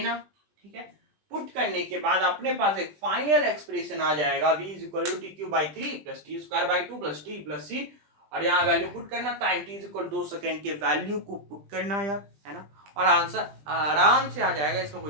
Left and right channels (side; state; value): left; late; 20 ms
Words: ठीक है, पुट करने के बाद अपने पास एक फाइनल एक्सप्रेशन आ जाएगा v is equal to t cube by 3 plus t square by 2 plus t plus c. और यहाँ वैल्यू पुट करना, time t is equal 2 second के वैल्यू को पुट करना यार, है ना. और आंसर आराम से आ जाएगा. इसमें